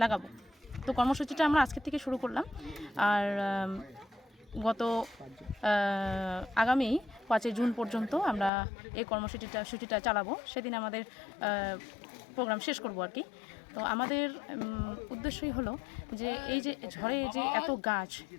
লাগাবো। তো কর্মসূচিটা আমরা আজকের থেকে শুরু করলাম। আর আগামী 5ই জুন পর্যন্ত আমরা এই কর্মসূচিটা চালাবো। সেদিন আমাদের প্রোগ্রাম শেষ করব আর কি। তো আমাদের উদ্দেশ্যই হলো যে এই যে ঝড়ে যে এত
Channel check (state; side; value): drops out; right; at 8.5 s